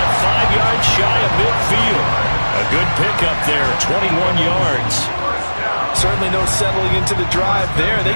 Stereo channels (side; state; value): both; inverted; correlation -1.00